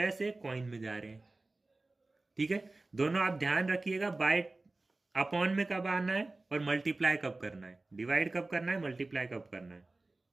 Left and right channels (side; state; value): left; quieter; 3.1 dB